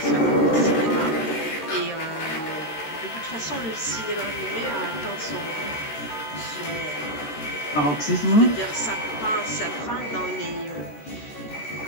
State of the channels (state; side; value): late; right; 14 ms